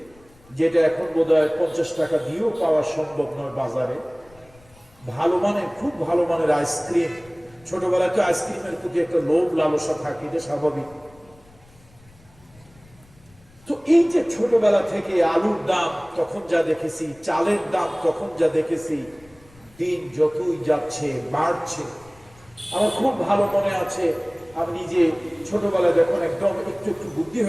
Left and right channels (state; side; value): noise; left; rumble, 27 dB below the sound